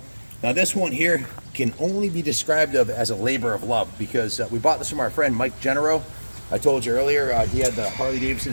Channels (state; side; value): inverted; both; correlation -1.00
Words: Now this one here can only be described of as a labor of love, because we bought this from our friend Mike Genero. I told you earlier, he had the Harley Davidson